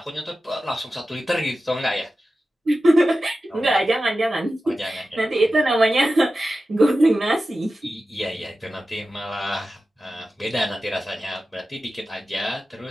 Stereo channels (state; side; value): normal; both; correlation 0.94